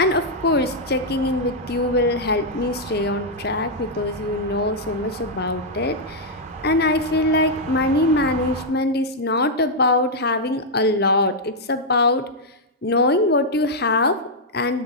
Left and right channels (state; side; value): normal; both; correlation -0.04